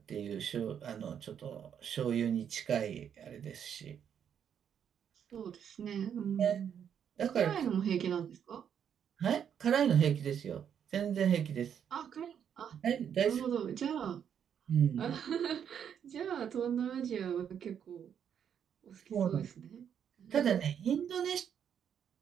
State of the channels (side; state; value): left; quieter; 8.4 dB